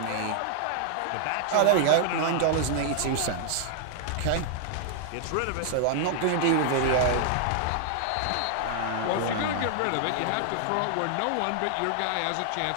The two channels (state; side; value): different; both; correlation 0.00